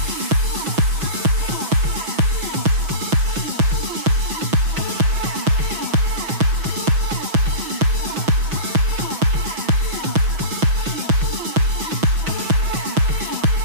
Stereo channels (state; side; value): late; left; 6.1 ms